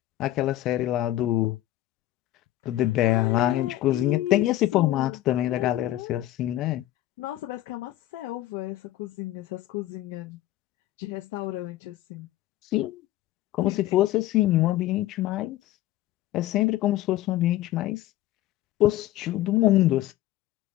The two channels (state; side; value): quieter; right; 14.8 dB